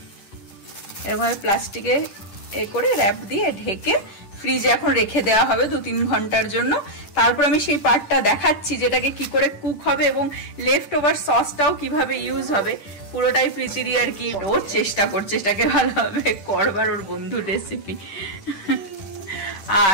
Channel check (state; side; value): late; right; 10 ms